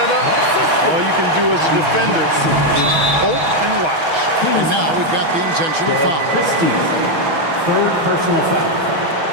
up. All you can do as a defender is hope and watch. And now we've got the intentional foul. Christie, 3rd personal foul.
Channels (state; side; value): late; left; 6.2 ms